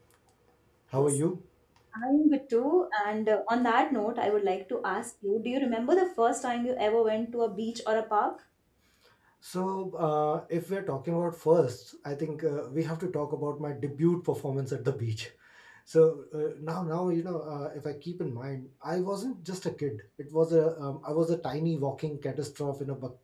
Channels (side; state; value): both; identical; correlation 1.00